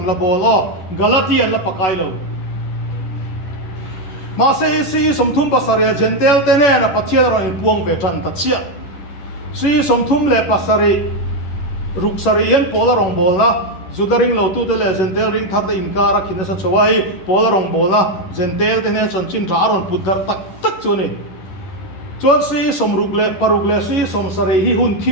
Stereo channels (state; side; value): late; right; 11 ms